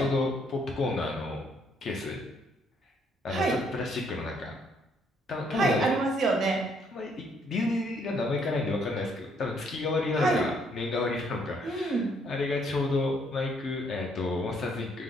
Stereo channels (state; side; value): normal; both; correlation 0.68